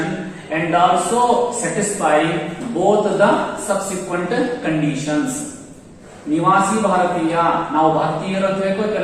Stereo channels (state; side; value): identical; both; correlation 1.00